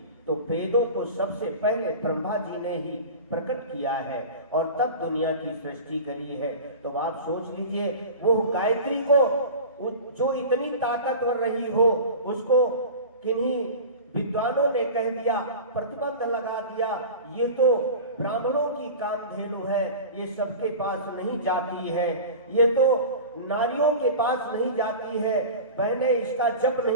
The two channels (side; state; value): both; inverted; correlation -0.33